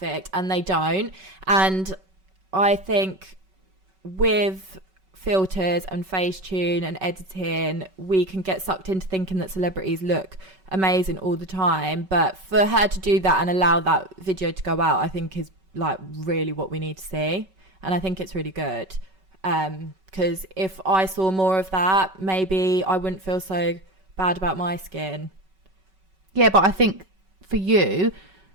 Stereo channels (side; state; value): left; late; 5.3 ms